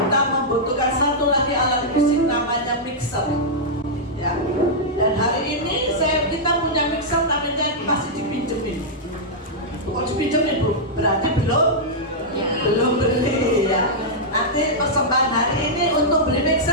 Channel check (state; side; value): normal; both; correlation -0.08